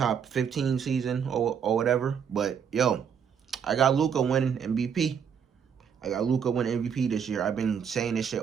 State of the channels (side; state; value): left; quieter; 7.4 dB